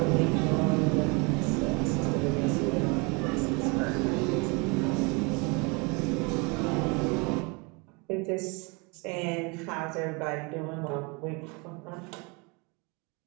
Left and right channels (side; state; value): left; quieter; 29.8 dB